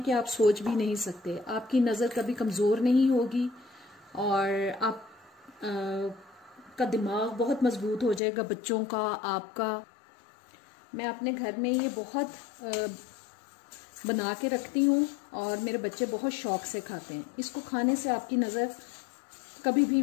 कि आप सोच भी नहीं सकते। आपकी नजर कभी कमजोर नहीं होगी और आप का दिमाग बहुत मजबूत हो जाएगा, बच्चों का, आपका। मैं अपने घर में ये बहुत बना के रखती हूँ और मेरे बच्चे बहुत शौक से खाते हैं। इसको खाने से आपकी नजर कभी भी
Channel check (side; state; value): right; drops out; at 8.2 s